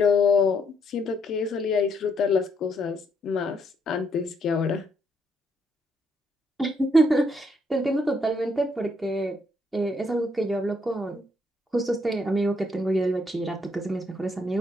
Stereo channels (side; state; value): both; normal; correlation 0.72